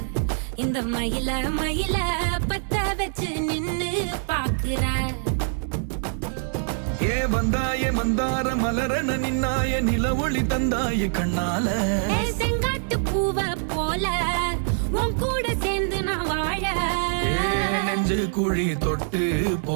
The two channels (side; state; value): left; silent; digital silence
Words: இந்த மயில மயில பத்த வச்சு நின்னு பாக்குற. ஏ வந்தாய மந்தார மலரன நின்னாய நில ஒளி தந்தாய கண்ணால. செங்காட்டு பூவ போல உன் கூட சேர்ந்து நான் வாழ. நெஞ்சு குழி தொட்டு